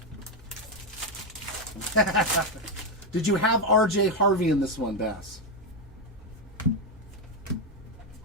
Did you have RJ Harvey in this one, Bass?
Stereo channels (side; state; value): both; normal; correlation 0.05